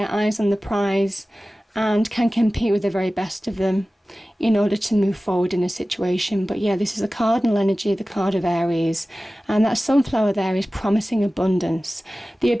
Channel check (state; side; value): normal; both; correlation 0.97